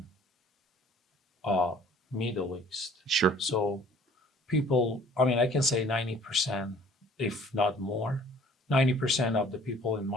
Middle East. Sure. So people, I can say 90%, if not more, 90% of the people in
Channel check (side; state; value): both; normal; correlation 0.53